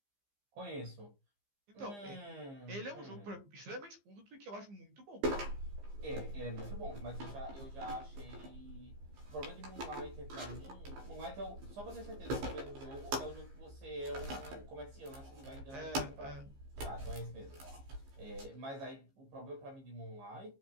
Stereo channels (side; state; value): left; late; 15 ms